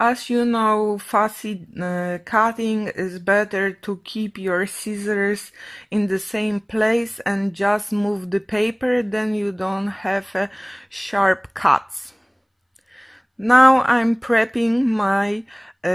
you know, fussy cutting is better to keep your scissors in the same place and just move the paper, then you don't have sharp cuts. Now I'm prepping my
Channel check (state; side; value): identical; both; correlation 1.00